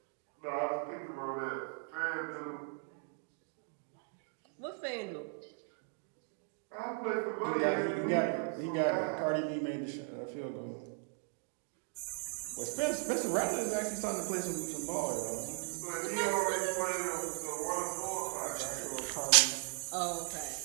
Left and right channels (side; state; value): left; silent; 53 dB below the other